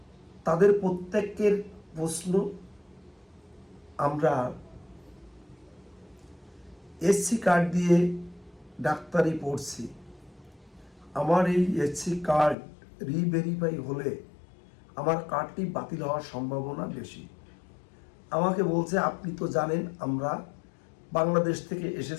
তাদের প্রত্যেকের প্রশ্ন, আমরা এসসি কার্ড দিয়ে ডাক্তারি পড়ছি, আমার এই এসসি কার্ড রিভেরিফাই হলে আমার কার্ডটি বাতিল হওয়ার সম্ভাবনা বেশি। আমাকে বলছে, আপনি তো জানেন আমরা বাংলাদেশ থেকে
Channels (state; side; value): drops out; right; at 12.6 s